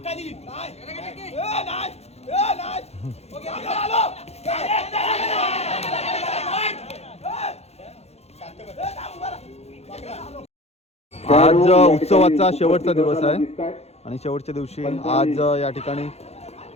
आज उत्सवाचा शेवटचा दिवस आहे आणि शेवटच्या दिवशी आज या ठिकाणी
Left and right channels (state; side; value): late; right; 0.31 ms